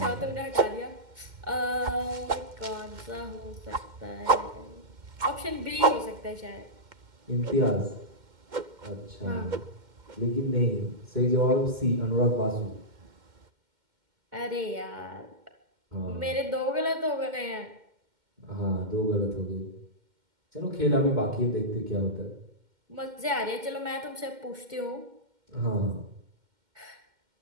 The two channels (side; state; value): left; late; 2.1 ms